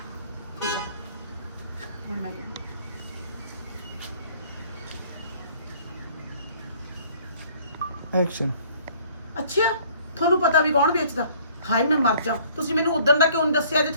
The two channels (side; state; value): both; inverted; correlation -0.56